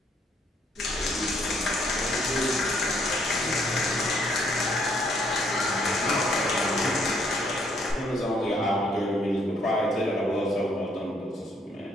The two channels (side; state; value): both; normal; correlation 0.68